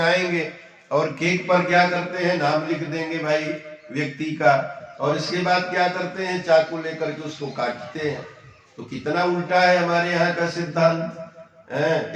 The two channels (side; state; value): both; identical; correlation 1.00